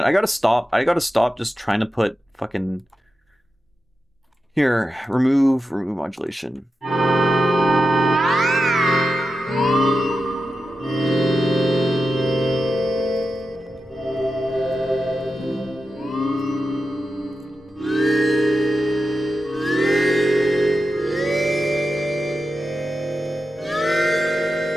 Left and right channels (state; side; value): normal; both; correlation 0.90